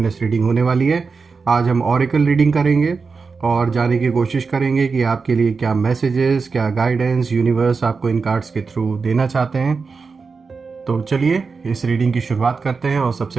reading होने वाली है। आज हम ऑरेकल रीडिंग करेंगे और जानने की कोशिश करेंगे कि आपके लिए क्या मैसेजेस, क्या गाइडेंस यूनिवर्स आपको इन कार्ड्स के थ्रू देना चाहते हैं। तो चलिए इस रीडिंग की शुरुआत करते हैं और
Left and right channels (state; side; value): quieter; left; 4.8 dB